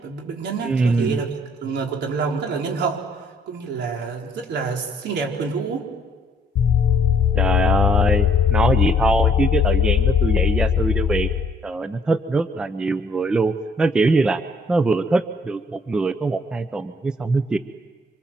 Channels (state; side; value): normal; both; correlation 0.64